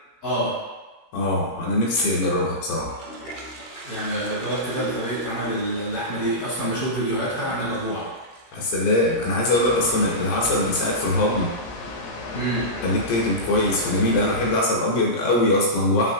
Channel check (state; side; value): late; right; 17 ms